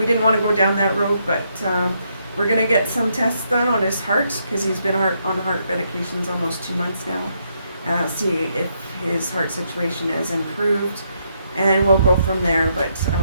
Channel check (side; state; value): both; inverted; correlation -0.77